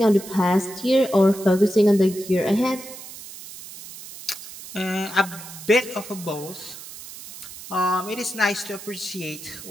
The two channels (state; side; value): noise; right; hiss, 14 dB below the sound